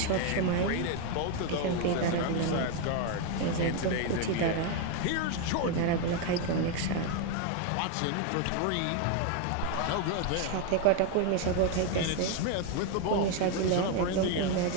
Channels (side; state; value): both; different; correlation 0.01